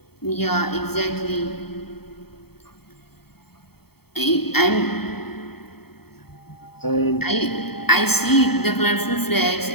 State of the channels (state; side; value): late; right; 0.96 ms